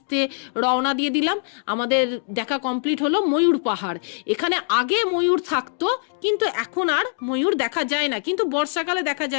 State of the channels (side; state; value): right; silent; digital silence